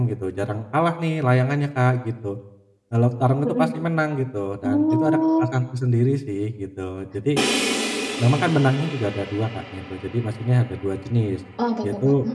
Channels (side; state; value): both; identical; correlation 1.00